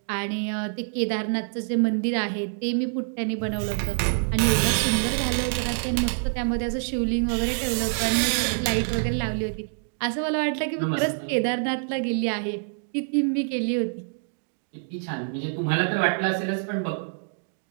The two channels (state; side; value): silent; left; digital silence